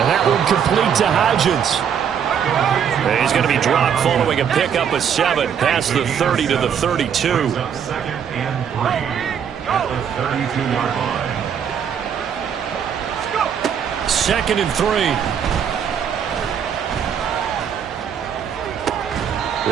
that one complete to Hodgins. He's going to be dropped following a pickup of 7 past the 30 to the 32. 2nd and 3 at the 32-yard line. 2nd and 3.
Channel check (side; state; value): left; quieter; 8.0 dB